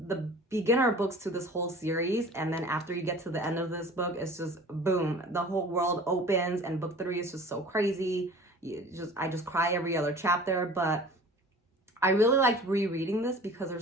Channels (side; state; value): both; normal; correlation 0.44